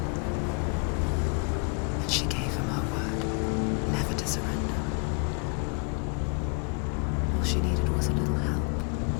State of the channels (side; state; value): right; quieter; 37.9 dB